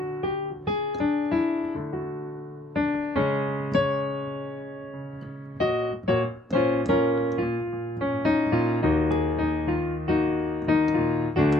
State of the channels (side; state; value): both; normal; correlation 0.67